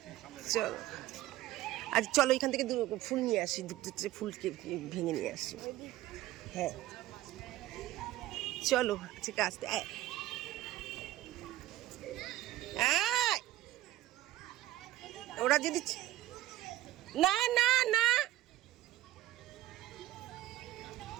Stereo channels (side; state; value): left; quieter; 15.0 dB